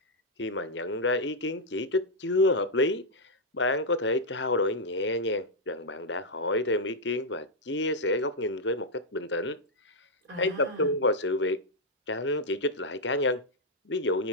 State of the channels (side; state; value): both; normal; correlation -0.04